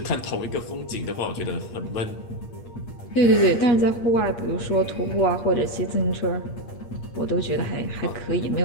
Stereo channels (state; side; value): late; right; 8.5 ms